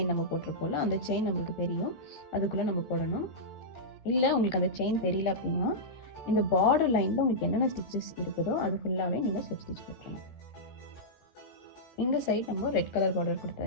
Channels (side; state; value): right; late; 13 ms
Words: நம்ம போட்டிருப்போம்ல அந்த செயின் நம்மளுக்கு தெரியும், அதுக்குள்ளே நம்ம போடணும். இல்லை உங்களுக்கு அந்த செயின் தெரியல அப்படின்னா இந்த பார்டர் லைனில் உங்களுக்கு என்னென்ன ஸ்டிச்சஸ் இருக்குதோ அது ஃபுல்லாகவே நீங்கள் ஸ்லிப் ஸ்டிச் போட்டுருங்க. இந்த சைடு நம்ம ரெட் கலர் பார்டர்